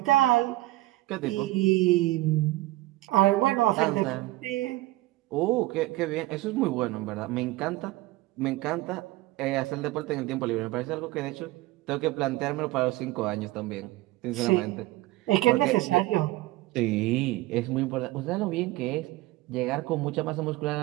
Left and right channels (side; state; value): left; quieter; 18.5 dB